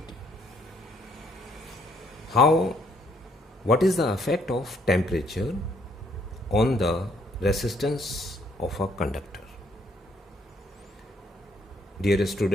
What is the effect of temperature on the resistance of a conductor? Dear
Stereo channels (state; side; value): normal; both; correlation 0.68